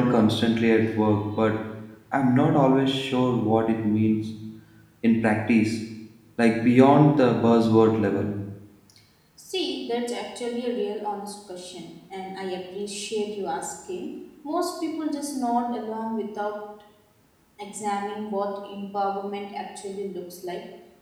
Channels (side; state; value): both; identical; correlation 1.00